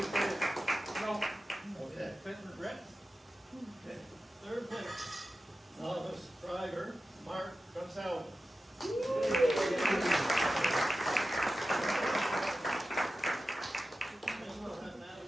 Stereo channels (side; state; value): both; normal; correlation 0.93